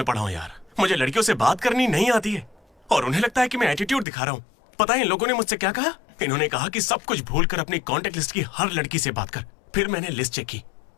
पढ़ा हूँ यार। मुझे लड़कियों से बात करनी नहीं आती है और उन्हें लगता है कि मैं एटीट्यूड दिखा रहा हूँ। पता है इन लोगों ने मुझसे क्या कहा? इन्होंने कहा कि सब कुछ भूलकर अपनी कॉन्टेक्ट लिस्ट की हर लड़की से बात कर। फिर मैंने लिस्ट चेक की,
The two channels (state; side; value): drops out; right; at 4.0 s